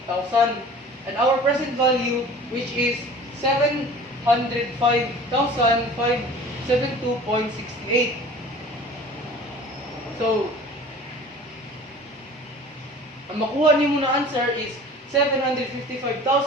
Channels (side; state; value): both; normal; correlation 0.44